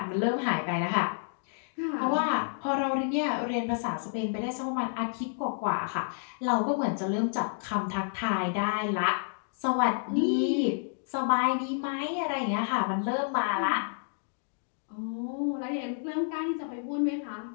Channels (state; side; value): silent; right; digital silence